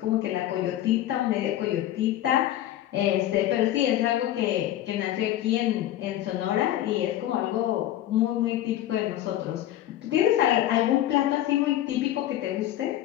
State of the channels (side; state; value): right; quieter; 13.1 dB